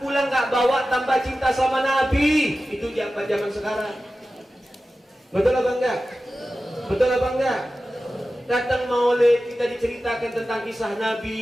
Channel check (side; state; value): both; normal; correlation 0.94